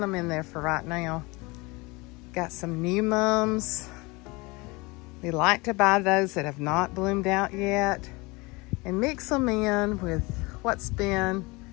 them in there for right now. Got some new mums. We like to buy those that have not bloomed out yet and mix them in with what's been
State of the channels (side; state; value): right; quieter; 24.9 dB